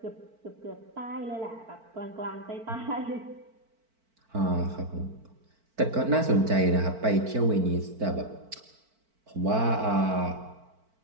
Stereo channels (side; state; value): left; late; 4.5 ms